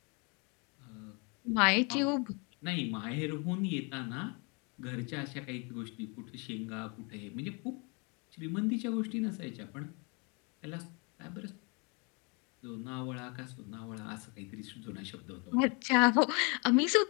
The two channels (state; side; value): quieter; right; 32.3 dB